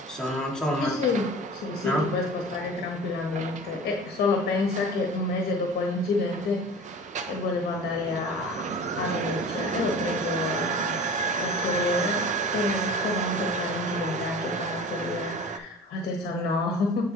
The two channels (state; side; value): normal; both; correlation 0.39